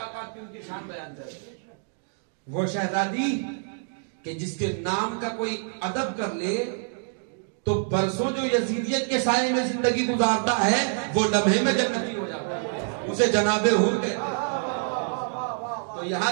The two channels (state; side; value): silent; left; digital silence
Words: کی ان کی شان بیان کریں. وہ شہزادی کہ جس کے نام کا کوئی ادب کر لے تو برسوں جو یزیدیت کے سائے میں زندگی گزارتا ہے وہ لمحے میں جنتی ہو جاتا ہے، اسے جناب حور کہتے ہیں. تو یہاں